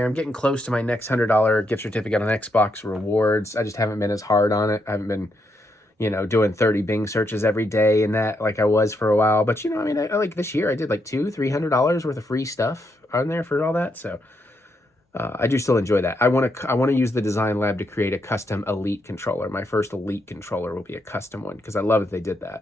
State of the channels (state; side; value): normal; both; correlation 0.79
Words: I'm getting close to my next $100 gift certificate on Xbox rewards. I just haven't been as hard on it. I haven't been, you know, doing 30 Bing searches every day and that like I was for a while. But, you know, I mean, I like this year I did like $200-$300 worth of free stuff on there for all that. So I do still enjoy that. I want to use the Design Lab to create a custom Elite controller. My first Elite controller will be a custom one because I love that they did that.